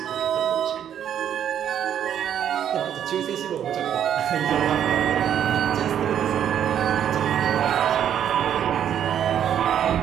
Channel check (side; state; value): left; quieter; 9.6 dB